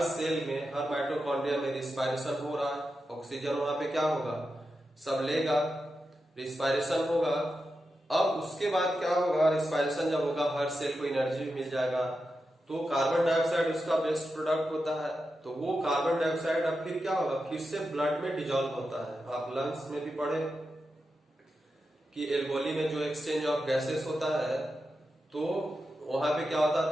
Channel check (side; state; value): both; normal; correlation 0.89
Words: सेल में, हर माइटोकॉन्ड्रिया में रिस्पायरेशन हो रहा है। ऑक्सीजन वहां पे क्या होगा, सब लेगा, रिस्पायरेशन होगा। अब उसके बाद क्या होगा, रिस्पायरेशन जब होगा, हर सेल को एनर्जी मिल जाएगा, तो कार्बन डाइऑक्साइड उसका बेस्ट प्रोडक्ट होता है। तो वो कार्बन डाइऑक्साइड अब फिर क्या होगा, फिर से ब्लड में डिजॉल्व होता है। आप लंग्स में भी पढ़े कि एल्वोली में जो एक्सचेंज ऑफ गैसेस होता है, तो वहां पे क्या होता